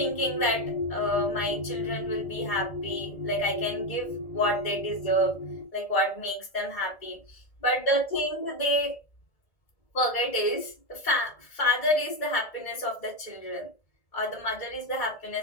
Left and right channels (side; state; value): right; late; 1.7 ms